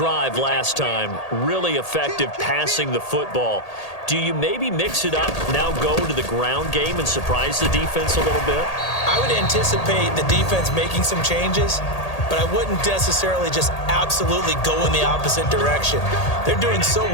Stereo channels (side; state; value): right; late; 1.8 ms